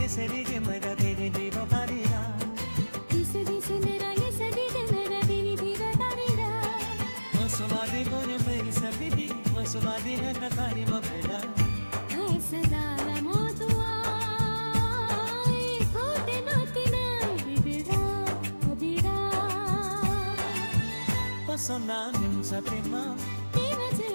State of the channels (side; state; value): both; inverted; correlation -1.00